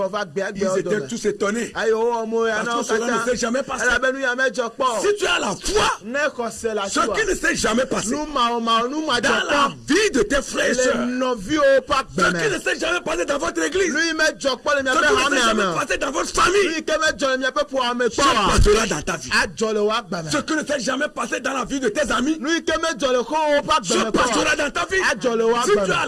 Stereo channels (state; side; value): identical; both; correlation 1.00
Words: gbe agbe Ils odo étaient tous étonnés. ayo omo ya Parce na que cela ne s'est jamais passé. elabenu ya mejo kpo Si tu as la foi, ne kose la ce qui ne s'est jamais passé nu ma nu ma dans jo la kpo vie de tes frères et le sœurs, novi o pa ce qui gbeme ne s'est jamais passé dans votre église, nu mejo kpo le mi ce abe qui ne ha s'est me jamais ame passé dans votre famille, nu ke mejo le mi abe po ame se kpo wa passera dans ta vie. ajole wa gbeme Ce qui ne s'est jamais passé dans la vie de tes amis, nu ke mejo le ko o pa se gbeme passera dans ta vie. ajole wa Si tu gbeme as